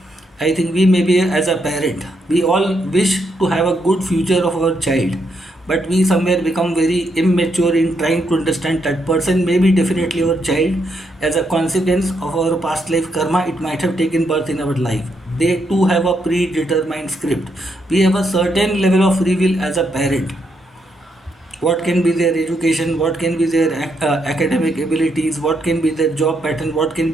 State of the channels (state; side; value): normal; both; correlation 0.78